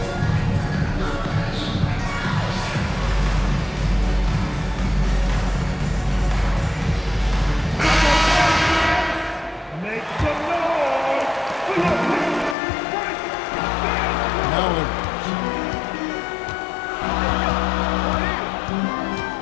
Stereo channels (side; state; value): right; drops out; at 12.6 s